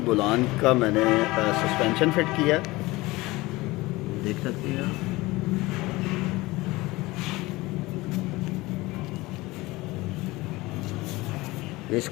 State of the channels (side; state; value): right; quieter; 20.7 dB